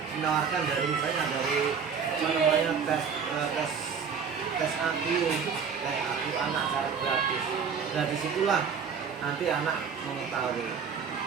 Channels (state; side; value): quieter; left; 6.4 dB